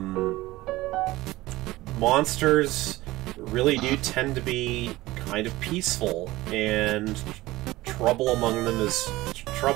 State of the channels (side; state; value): left; quieter; 18.4 dB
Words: monsters really do tend to be kind of peaceful, and trouble among